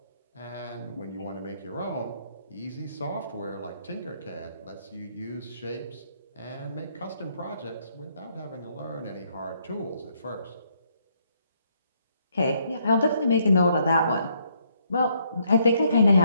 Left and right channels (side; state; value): both; inverted; correlation -0.71